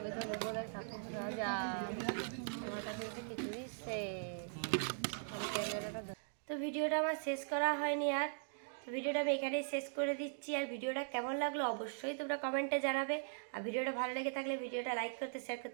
তো নেবো না 7,000 আমার কাছে তো কিছু দিচ্ছে আমি ক্যামেরাটা তো ভিডিওটা আমার শেষ করা হয়নি আর তো ভিডিওটা আমি এখানেই শেষ করে দিচ্ছি আর ভিডিওটা কেমন লাগলো অবশ্যই তোমরা কমেন্টে জানাবে আর ভিডিওটা ভালো লেগে থাকলে ভিডিওটা লাইক করতে শেয়ার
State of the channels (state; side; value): silent; left; digital silence